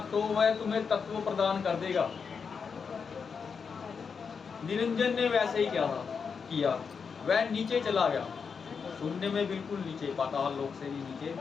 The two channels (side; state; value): right; quieter; 5.9 dB